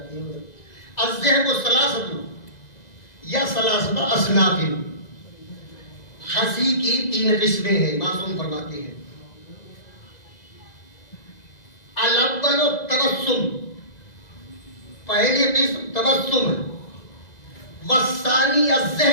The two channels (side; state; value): right; late; 2.0 ms